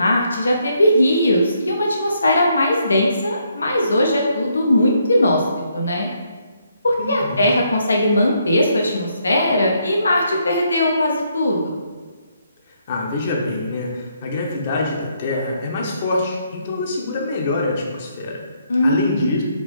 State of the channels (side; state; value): both; inverted; correlation -0.73